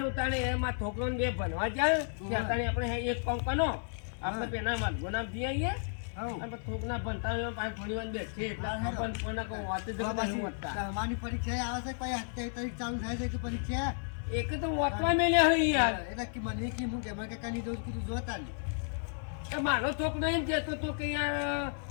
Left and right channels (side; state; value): right; silent; digital silence